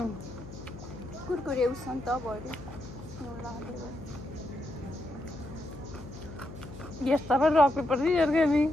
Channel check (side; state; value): left; noise; hum, 14 dB below the sound